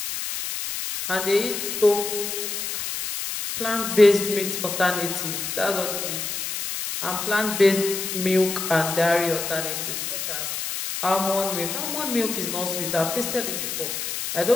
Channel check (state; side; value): noise; left; hiss, 4 dB below the sound